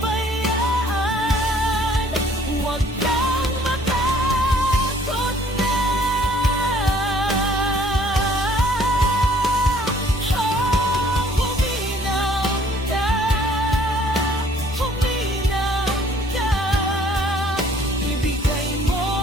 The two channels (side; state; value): both; normal; correlation 0.59